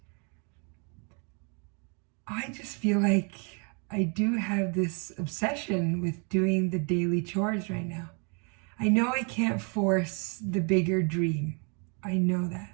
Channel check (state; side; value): quieter; left; 36.2 dB